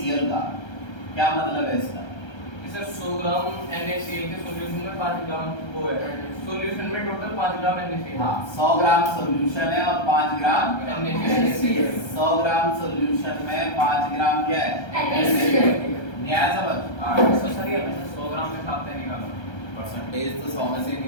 का, क्या मतलब है इसका? सर 100 ग्राम NaCl के सॉल्यूशन में 5 ग्राम वो है, सॉल्यूशन में टोटल 5 ग्राम NaCl। हाँ 100 ग्राम सॉल्यूशन है और 5 ग्राम NaCl। 100 ग्राम सॉल्यूशन में 5 ग्राम क्या है NaCl। न्याय समझ? तो सर ये 100 ग्राम में खाते निकाला परसेंटेज तो 100 में से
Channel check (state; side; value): late; right; 1.3 ms